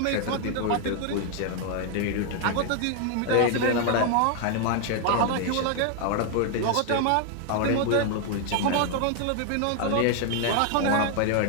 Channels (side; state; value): both; different; correlation 0.00